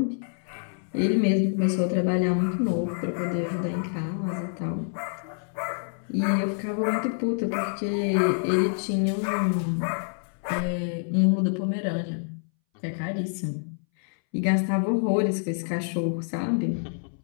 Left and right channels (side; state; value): right; silent; 60 dB below the other